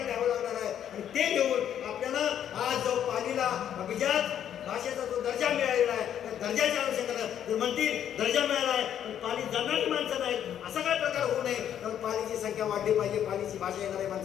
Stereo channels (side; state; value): right; quieter; 9.8 dB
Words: लिहावं लागणार आहे. आणि ते लिहून आपल्याला आज जो पालीला अभिजात भाषेचा जो दर्जा मिळालेला आहे त्या दर्जाच्या अनुषंगाने जर म्हणतील दर्जा मिळाला आहे पण पाली जाणणारी माणसं नाहीत असा काय प्रकार होऊ नये. तर पालीची संख्या वाढली पाहिजे, पालीची भाषा येणाऱ्या